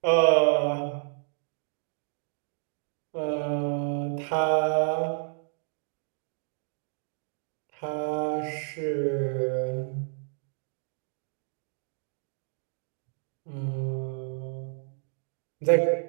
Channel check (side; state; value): left; silent; digital silence